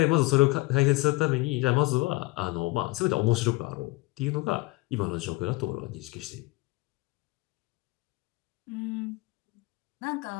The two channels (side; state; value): right; quieter; 22.0 dB